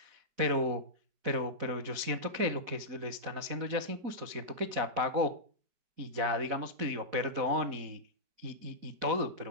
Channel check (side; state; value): left; late; 4.1 ms